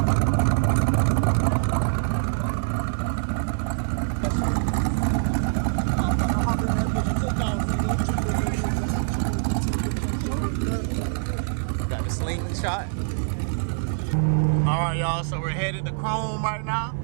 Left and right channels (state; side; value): silent; left; 61 dB below the other